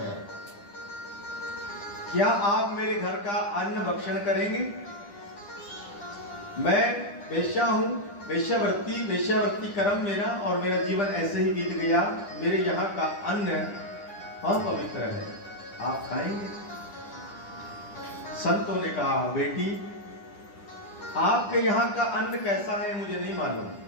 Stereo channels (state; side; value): late; right; 10 ms